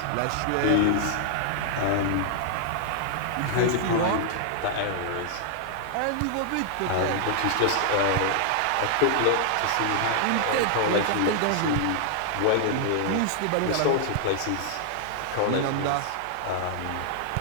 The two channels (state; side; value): different; both; correlation 0.00